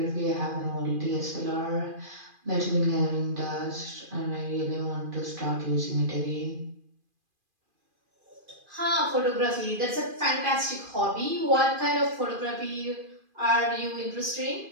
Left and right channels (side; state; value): left; late; 2.4 ms